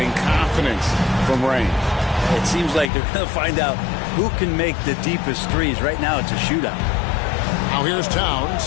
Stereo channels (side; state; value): right; drops out; at 2.9 s